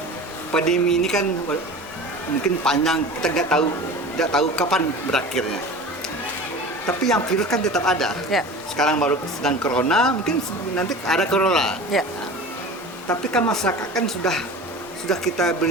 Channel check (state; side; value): normal; both; correlation 0.36